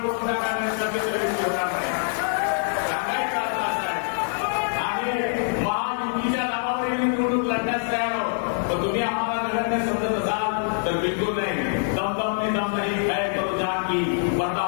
जागा मिळत नसतील तर युती होणार नाही. सांगायचं असं आहे. आणि महायुतीच्या नावावरील निवडणूक लढण्यास तयार आहोत. पण तुम्ही आम्हाला नगण्य समजत असाल तर बिलकुल नाही. दम नहीं है तो जान की पर्दा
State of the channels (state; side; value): silent; right; digital silence